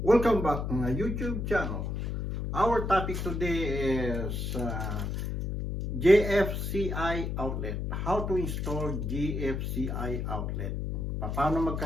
welcome back to my YouTube channel. Our topic today is GFCI outlet. How to install GFCI outlet. Paano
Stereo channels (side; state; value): left; noise; hum, 2 dB below the sound